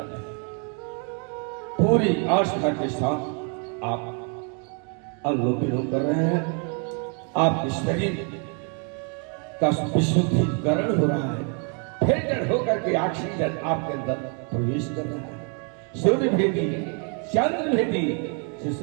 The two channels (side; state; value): left; quieter; 39.6 dB